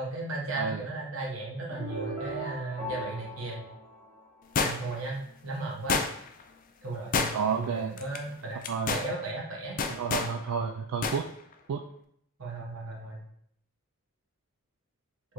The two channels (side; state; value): both; normal; correlation 0.15